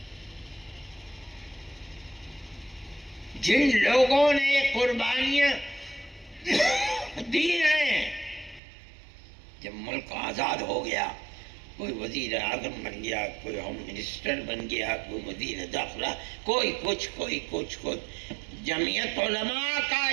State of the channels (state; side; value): drops out; left; at 8.6 s